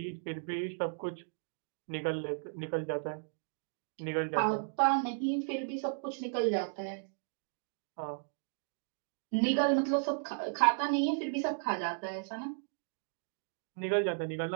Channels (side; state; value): left; silent; digital silence